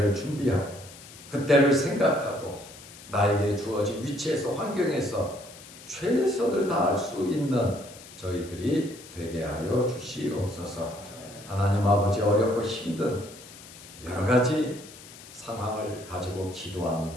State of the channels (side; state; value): left; noise; hiss, 18 dB below the sound